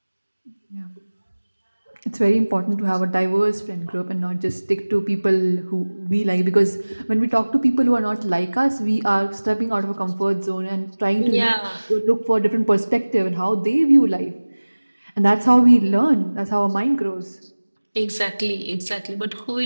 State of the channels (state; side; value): inverted; both; correlation -1.00